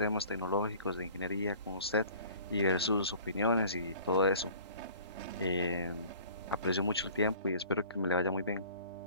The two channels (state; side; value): inverted; both; correlation -0.48